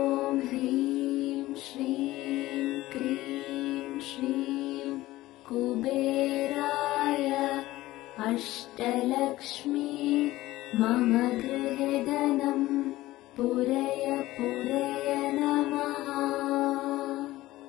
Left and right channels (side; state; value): right; quieter; 17.0 dB